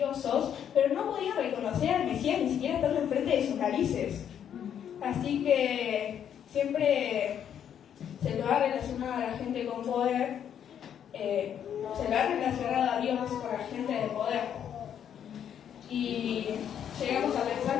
pero no podían reconocer al Mesías ni siquiera estando enfrente de sus narices. Así que siempre se lo ha relacionado a la gente con poder, se lo ha relacionado a Dios con la gente de poder. Y llegamos a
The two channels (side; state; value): right; quieter; 9.1 dB